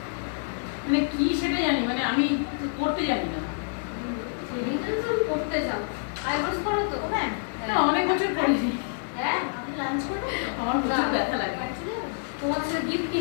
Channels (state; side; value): silent; right; digital silence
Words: মানে কি সেটা জানি, মানে আমি করতে জানি না। থ্রেডিংটা তো তুমি করতে যাও, আইব্রোস করো তো? হ্যাঁ। অনেক বছর করিনি। হ্যাঁ, আপনি লাঞ্চ করবেন? আমার প্রচুর ব্যথা লাগে। তোমার সাথে গিফট